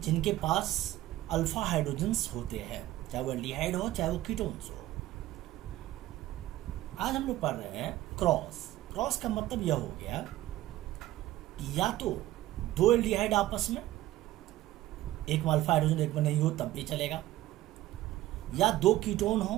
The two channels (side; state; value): left; quieter; 15.5 dB